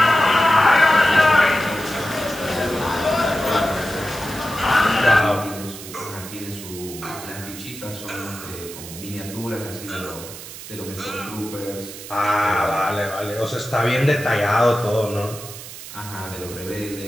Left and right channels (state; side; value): noise; right; hiss, 13 dB below the sound